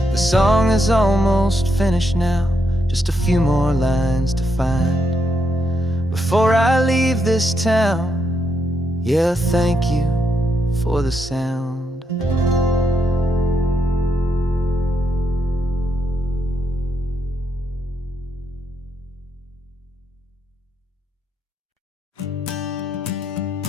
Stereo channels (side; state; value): both; normal; correlation 0.80